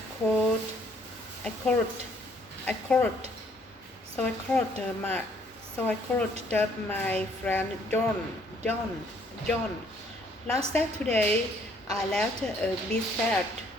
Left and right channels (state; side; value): normal; both; correlation 0.64